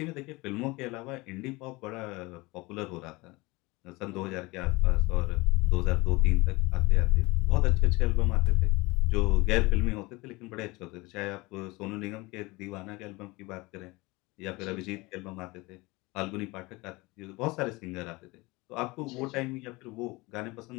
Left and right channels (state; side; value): quieter; right; 23.3 dB